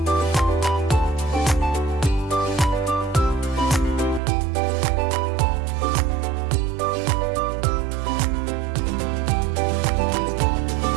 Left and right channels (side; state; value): left; drops out; at 4.2 s